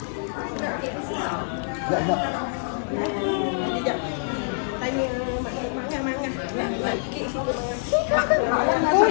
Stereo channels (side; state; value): right; silent; digital silence